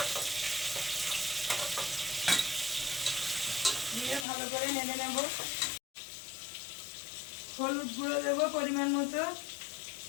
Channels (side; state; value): right; drops out; at 4.2 s